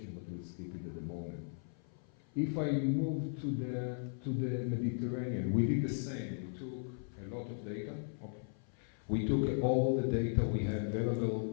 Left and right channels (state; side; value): silent; right; 53 dB below the other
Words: but we'll skip it at the moment. If I move to the Mediterranean, we did the same. We took a lot of data. Okay. We took all the data we had available